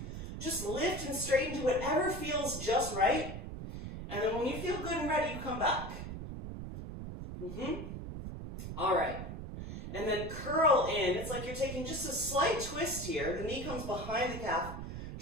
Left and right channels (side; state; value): right; noise; rumble, 8 dB below the sound